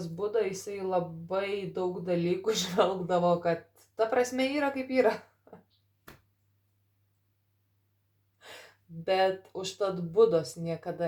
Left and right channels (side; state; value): both; identical; correlation 1.00